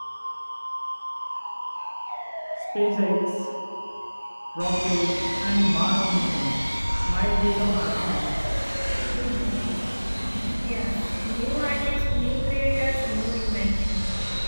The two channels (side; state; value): both; inverted; correlation -1.00